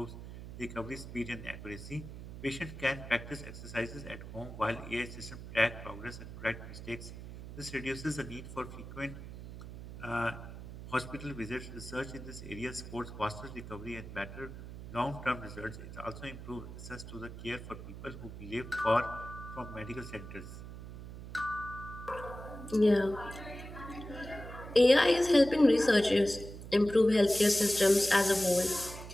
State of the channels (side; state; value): right; noise; hum, 12 dB below the sound